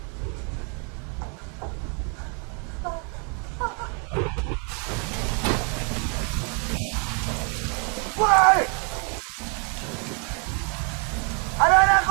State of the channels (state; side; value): quieter; left; 37.1 dB